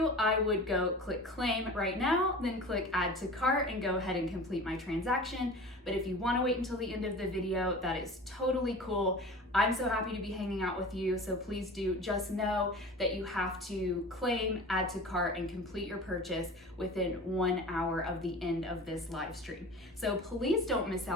I would go click claim right now, then click add to cart and go ahead and complete my transaction. But if you want to wait until the end of the video, that is totally cool. I'm so happy to be hanging out with you, so please do just know that you have to claim, add to cart, and complete your purchase within 1 hour of the end of this live stream. So please don't miss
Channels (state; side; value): normal; both; correlation 0.37